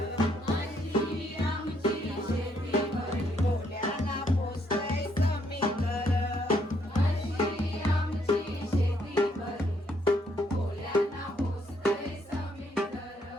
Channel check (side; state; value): both; normal; correlation 0.71